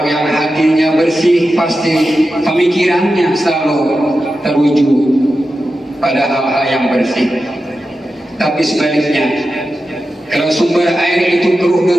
yang hatinya bersih, pasti pemikirannya selalu terwujud pada hal-hal yang bersih. Tapi sebaliknya, kalau sumber air itu keruh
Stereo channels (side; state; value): both; normal; correlation 0.91